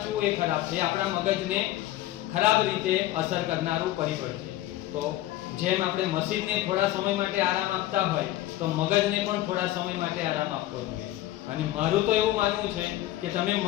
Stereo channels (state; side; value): quieter; right; 15.1 dB